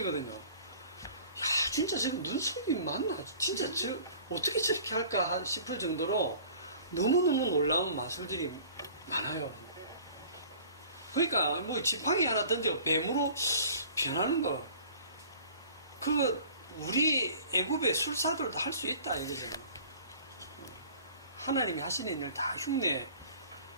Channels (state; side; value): inverted; both; correlation -0.47